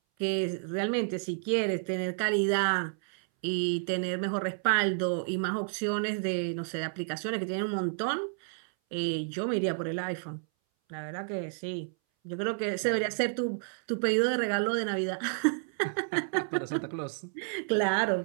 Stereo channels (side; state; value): left; silent; 57 dB below the other